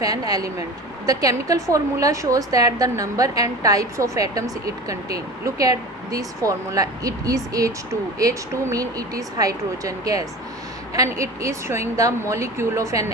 an element. The chemical formula shows that the number and types of atoms it contains. Look at this formula. It is H2. H2 means it is hydrogen gas, and it is showing the molecule of an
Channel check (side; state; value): both; normal; correlation 0.34